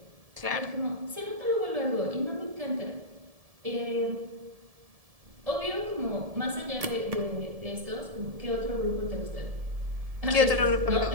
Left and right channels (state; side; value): late; left; 1.7 ms